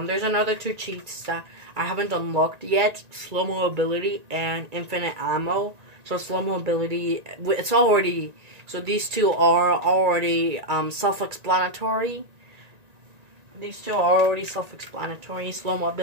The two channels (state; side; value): late; left; 1.9 ms